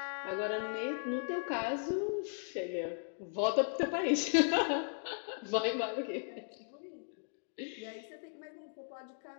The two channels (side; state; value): right; silent; digital silence